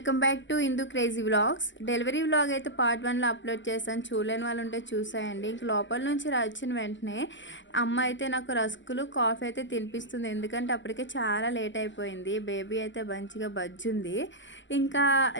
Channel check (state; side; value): late; right; 0.54 ms